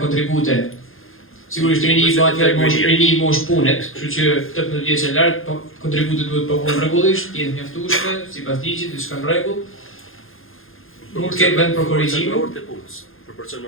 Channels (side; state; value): right; late; 0.60 ms